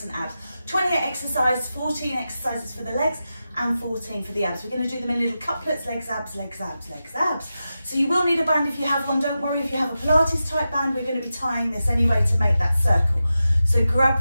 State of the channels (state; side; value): inverted; both; correlation -0.92